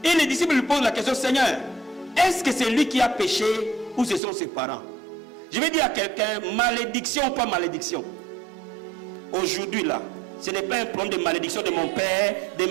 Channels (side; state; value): left; drops out; at 4.2 s